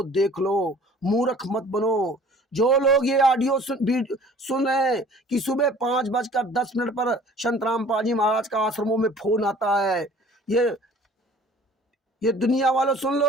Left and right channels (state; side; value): normal; both; correlation 0.50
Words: देख लो, मूर्ख मत बनो। जो लोग ये ऑडियो सुन रहे हैं कि सुबह 5:10 पर संतराम पाल जी महाराज का आश्रमों में फोन आता है, ये दुनिया वालों सुन